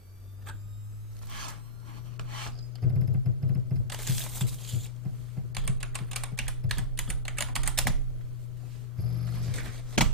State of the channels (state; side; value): normal; both; correlation -0.17